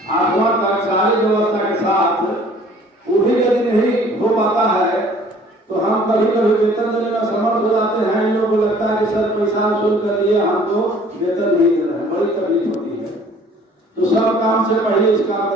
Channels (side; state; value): both; normal; correlation 0.53